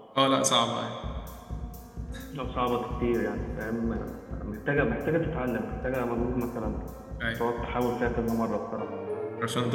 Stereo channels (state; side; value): identical; both; correlation 1.00